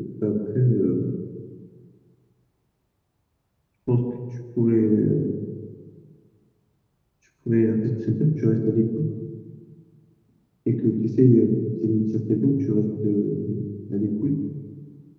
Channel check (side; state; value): both; identical; correlation 1.00